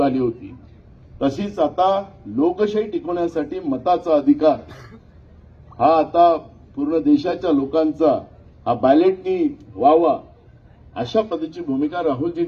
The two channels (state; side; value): identical; both; correlation 1.00